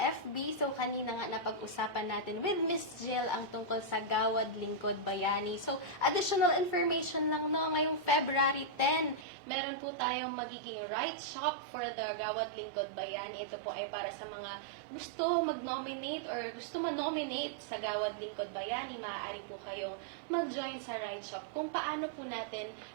So kanina nga napag-usapan natin with Miss Jill ang tungkol sa Gawad Lingkod Bayani. So additional information lang no, ngayong February 10, meron po tayong magiging right shop for the Gawad Lingkod Bayani. Ito po ay para sa mga gusto mag-nominate or gusto ma-nominate sa Gawad Lingkod Bayani. Maaari po kayong mag-join sa right shop kung paano po natin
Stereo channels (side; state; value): left; drops out; at 9.2 s